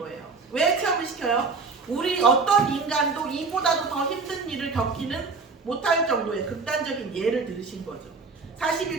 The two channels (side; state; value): left; quieter; 4.4 dB